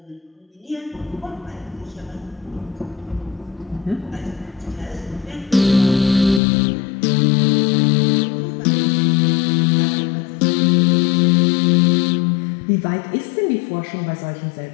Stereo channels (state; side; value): drops out; right; at 6.4 s